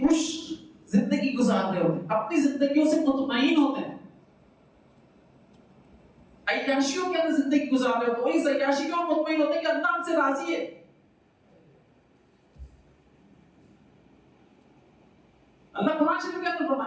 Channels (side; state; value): both; identical; correlation 1.00